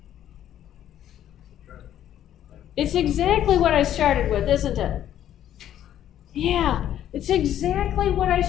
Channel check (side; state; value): right; quieter; 11.2 dB